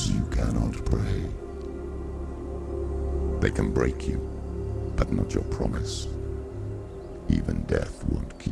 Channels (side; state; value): both; identical; correlation 1.00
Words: you cannot pray. They can break you, but not your promise. Even death won't